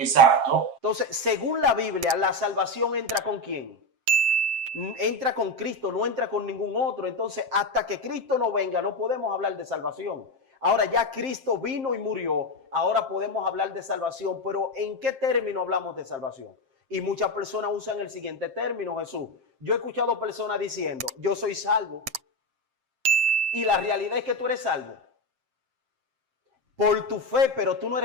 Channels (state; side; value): late; left; 7.6 ms